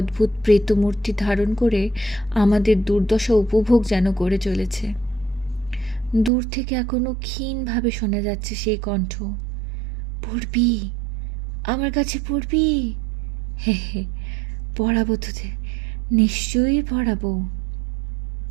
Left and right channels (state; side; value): drops out; left; at 6.3 s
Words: প্রেতমূর্তি ধারণ করে আমাদের দুর্দশা উপভোগ যেন করে চলেছে। দূর থেকে এখনো ক্ষীণভাবে শোনা যাচ্ছে সেই কণ্ঠ, পড়বি, আমার কাছে পড়বি? হে হে, পড়াবো তোদের, নিশ্চয়ই পড়াবো।